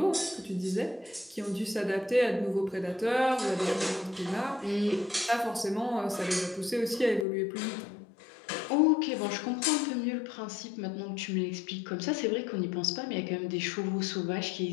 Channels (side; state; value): right; drops out; at 7.2 s